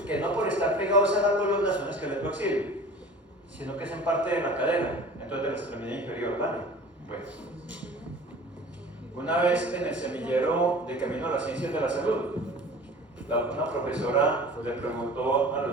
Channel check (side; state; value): both; normal; correlation 0.41